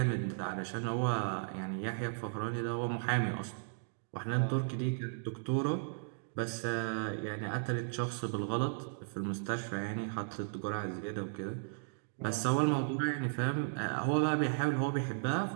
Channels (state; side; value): silent; left; digital silence